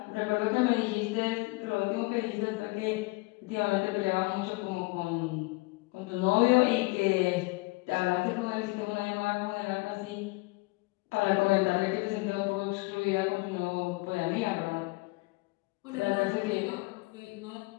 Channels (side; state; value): right; quieter; 24.9 dB